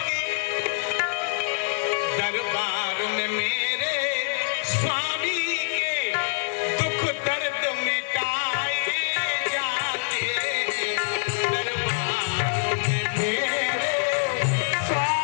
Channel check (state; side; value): silent; right; 58 dB below the other